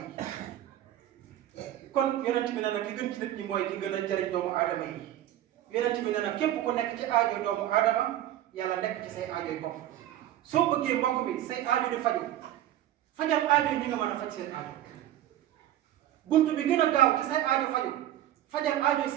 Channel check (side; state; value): left; quieter; 12.7 dB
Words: kon yonent bi nee na ki gën ci nit ñi mooy ki gën a jëriñ doomu aadama yi yonent bi nee na képp ku nekk ci aajoy doomu aadama yàlla nekk ci say aajoy bopp soo bëggee mbokk bi say aajo di faju fajal aajo yi ñi nga mën a faj seen aajo buntu bi gën a gaaw ci say aajo faju fajal aajo